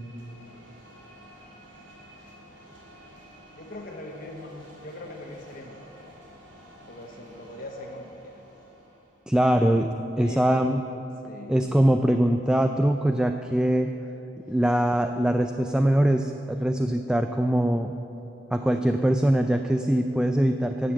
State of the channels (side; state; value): both; normal; correlation 0.93